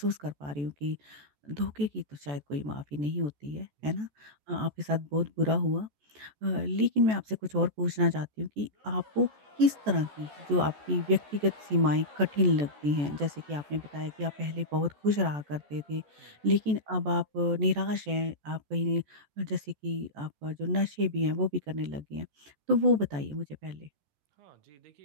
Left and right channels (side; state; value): left; late; 14 ms